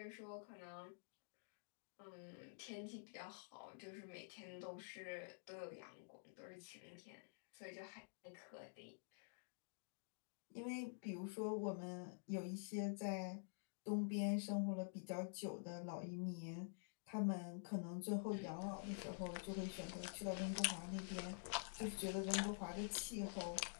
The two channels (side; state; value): right; silent; digital silence